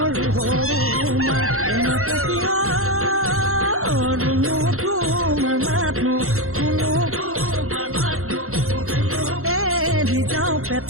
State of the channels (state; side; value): late; left; 0.63 ms